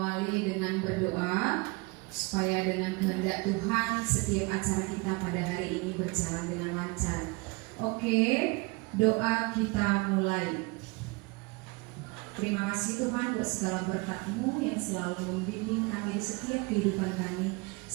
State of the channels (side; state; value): left; quieter; 26.8 dB